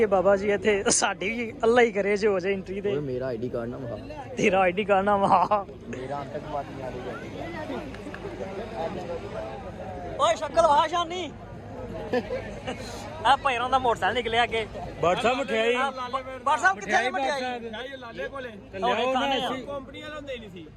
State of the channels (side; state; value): both; identical; correlation 1.00